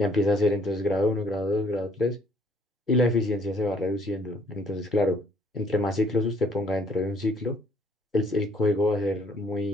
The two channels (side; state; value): both; normal; correlation 0.64